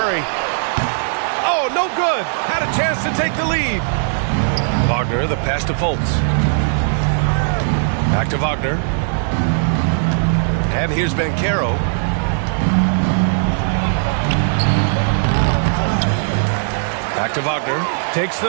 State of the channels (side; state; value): left; silent; digital silence